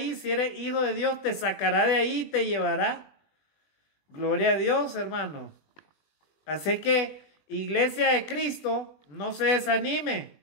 si eres hijo de Dios, te sacará de ahí y te llevará. Gloria a Dios, hermano. Así que, iglesia de Cristo, no se desanime.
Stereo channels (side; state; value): right; late; 20 ms